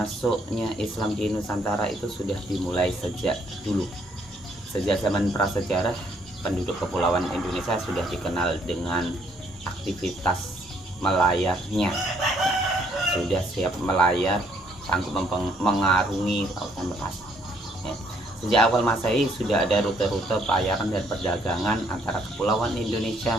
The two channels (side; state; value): both; normal; correlation 0.68